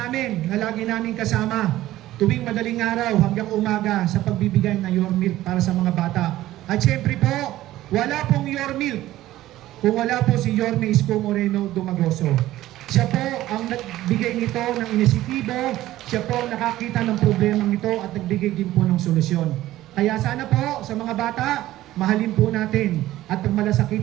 na lagi namin kasama tuwing madaling araw hanggang umaga sa pagbibigay ng Your Milk para sa mga bata. At syempre po, wala pong Your Milk kung wala po si Yorme Isko Moreno Dumagoso. Siya po ang nagbigay nito ng inisitibo, siya po ang nakakita ng problemang ito at nagbigay din po ng solusyon. Kaya sana po sa mga bata, mahalin po natin at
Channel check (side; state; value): left; quieter; 15.1 dB